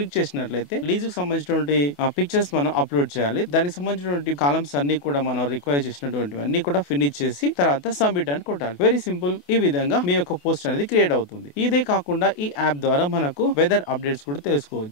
చేసినట్లయితే లీజ్ కు సంబంధించినటువంటి పిక్చర్స్ మనం అప్లోడ్ చేయాలి. దానికి సంబంధించినటువంటి కాలమ్స్ అన్ని కూడా మనం రిక్వైర్ చేసినటువంటి అన్ని కూడా ఫినిష్ చేసి తర్వాత సబ్మిట్ అని కొట్టాలి. Very simple. ఈ విధంగా మీ యొక్క పోస్ట్ అనేది క్రియేట్ అవుతుంది. ఇదే కాకుండా ఈ యాప్ ద్వారా మనకు వెదర్ అప్డేట్స్ కూడా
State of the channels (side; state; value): right; late; 28 ms